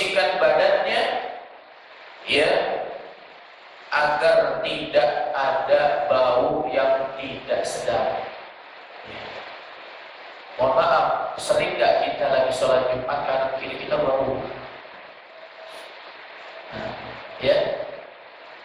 badannya, ya, agar tidak ada bau yang tidak sedap. Ya. Mohon maaf, sering nggak kita lagi sholat Jumat kanan kiri kita bau? Nah, ya,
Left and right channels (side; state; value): both; identical; correlation 1.00